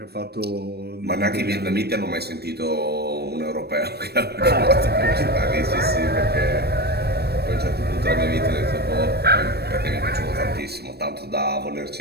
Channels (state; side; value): late; left; 0.47 ms